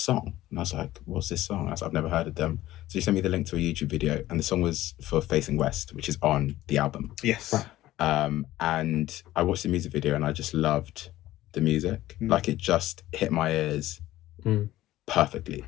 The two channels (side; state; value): right; quieter; 15.3 dB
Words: And I was like, what's this song? I was like, I've never heard of them. So she sent me the link to a YouTube video. And the song was for Facing West, which is on the album. Yes. And I watched the music video and I just loved the music. Like it just hit my ears perfectly.